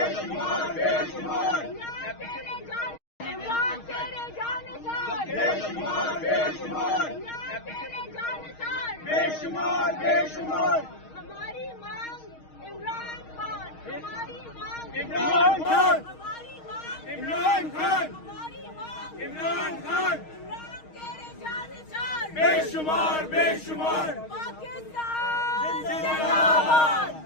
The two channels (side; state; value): right; late; 6.4 ms